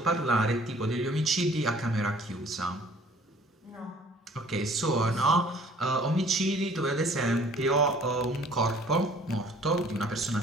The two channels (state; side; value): normal; both; correlation 0.55